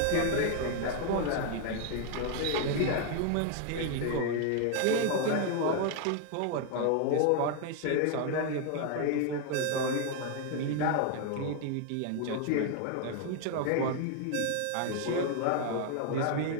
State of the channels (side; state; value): both; different; correlation 0.00